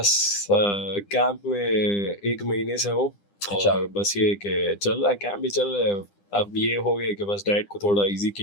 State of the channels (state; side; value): late; right; 9.9 ms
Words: कैंप में 1 महीने से हूँ, अच्छा। और बस ये कि चल रहा है, कैंप भी चल रहा है। अब ये हो गया कि बस डाइट को थोड़ा इजी